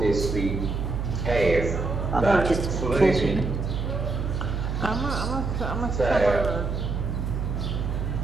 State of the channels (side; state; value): right; noise; hum, 2 dB below the sound